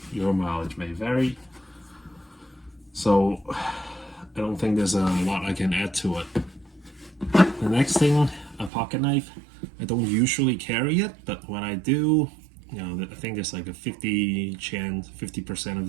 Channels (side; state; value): left; drops out; at 8.7 s